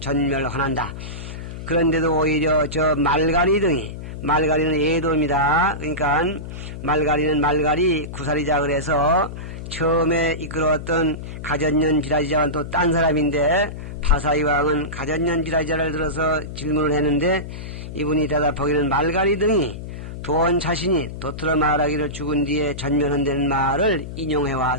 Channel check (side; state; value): left; noise; hum, 9 dB below the sound